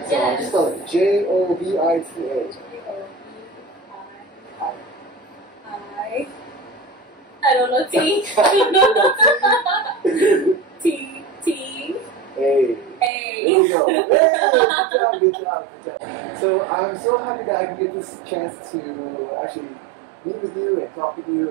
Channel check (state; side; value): drops out; left; at 13.1 s